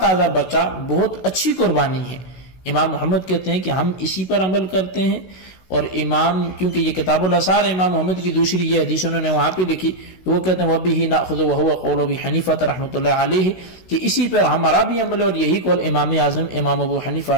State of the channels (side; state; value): right; late; 16 ms